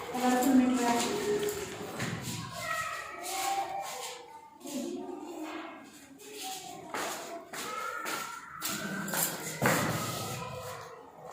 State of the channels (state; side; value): identical; both; correlation 1.00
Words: कलरफुल मिट रहा है।